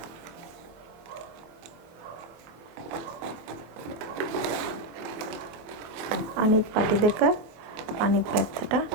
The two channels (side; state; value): left; late; 24 ms